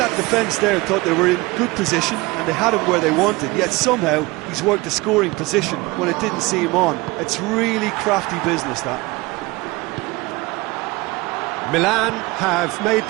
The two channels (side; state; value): left; quieter; 22.6 dB